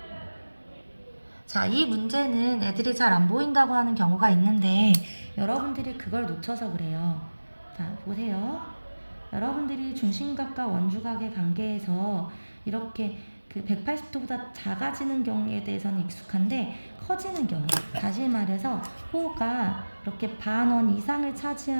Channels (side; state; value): both; inverted; correlation -1.00